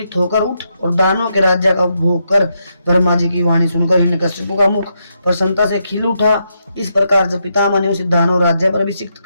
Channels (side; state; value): both; inverted; correlation -0.81